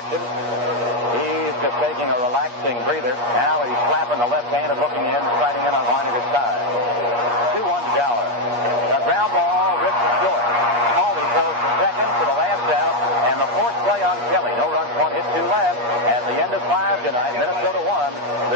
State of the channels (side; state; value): left; late; 8.4 ms